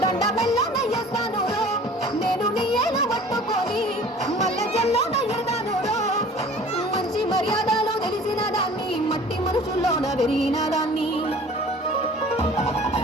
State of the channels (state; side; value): normal; both; correlation 0.46